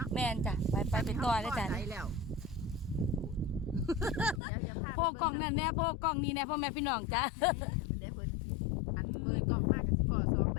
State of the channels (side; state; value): right; drops out; at 4.4 s